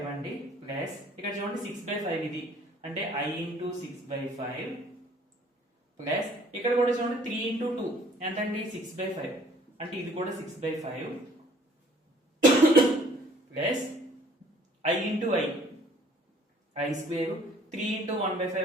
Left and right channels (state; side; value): normal; both; correlation 0.57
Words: అండి ప్లస్ ఇక్కడ చూడండి 6/5 ఇది అంటే I into 6/5 ప్లస్ ఇక్కడ కూడా చూడండి 3 into 2 ఎంతండి 6/5 అంటే ఇది కూడా 6/5 plus I into I square 3 into